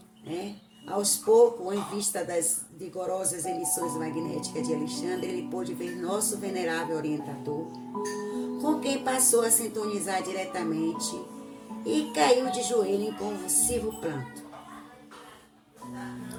Aos poucos, em vista das vigorosas emissões magnéticas de Alexandre, ele pôde ver nosso venerável orientador, com quem passou a sintonizar diretamente e caiu de joelho em convulsivo pranto.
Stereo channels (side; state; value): both; identical; correlation 1.00